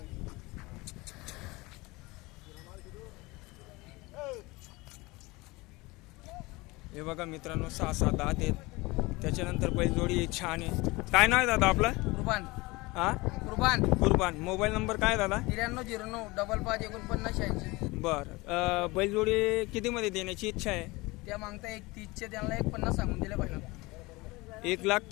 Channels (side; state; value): right; quieter; 22.8 dB